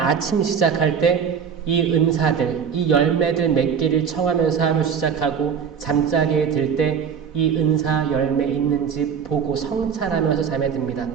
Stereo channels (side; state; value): left; quieter; 7.0 dB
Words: 시작할 때 이 은사들, 이 열매들 맺기를 청하면서 하루 시작하고 잠자리에 들 때 이 은사 열매 있는지 보고 성찰하면서 잠에 듭니다.